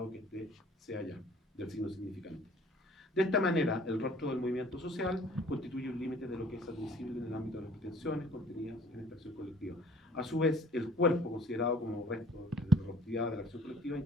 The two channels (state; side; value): normal; both; correlation 0.53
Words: que este sea ya, del signo significante. De esta manera, el rostro del movimiento social constituye un límite de lo que es admisible en el ámbito de las pretensiones contenidas en esta acción colectiva. A su vez, el cuerpo, considerado como resto de la rostridad de la acción colectiva,